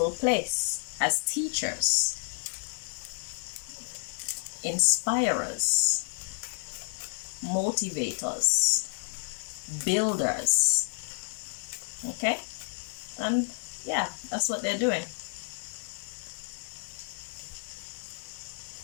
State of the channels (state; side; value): silent; right; digital silence